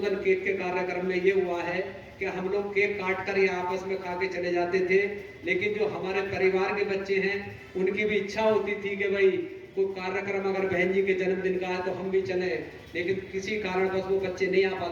केक के कार्यक्रम में ये हुआ है कि हम लोग केक काट कर या आपस में खा के चले जाते थे, लेकिन जो हमारे परिवार के बच्चे हैं उनकी भी इच्छा होती थी कि भाई कोई कार्यक्रम अगर बहन जी के जन्मदिन का है तो हम भी चले, लेकिन किसी कारणवश वो बच्चे नहीं आ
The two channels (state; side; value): identical; both; correlation 1.00